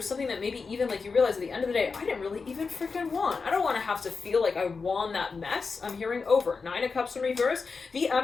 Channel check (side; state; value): right; quieter; 4.7 dB